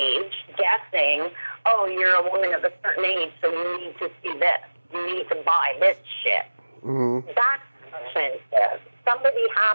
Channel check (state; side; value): inverted; both; correlation -1.00